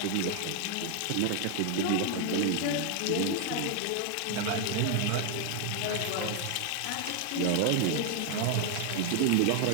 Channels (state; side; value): different; both; correlation 0.00